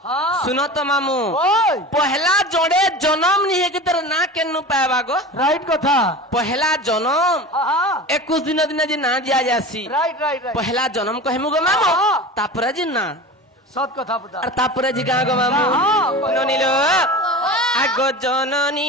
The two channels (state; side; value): normal; both; correlation 0.32